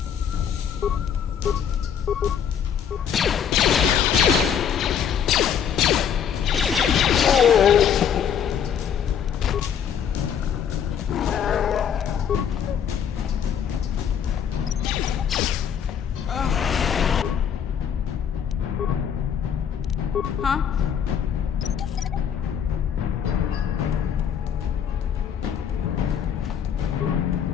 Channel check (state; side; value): quieter; right; 8.2 dB